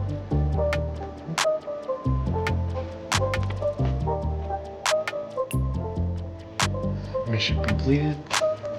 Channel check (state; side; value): identical; both; correlation 1.00